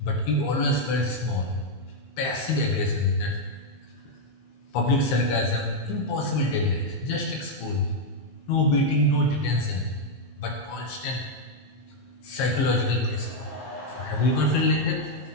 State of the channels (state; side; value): late; right; 15 ms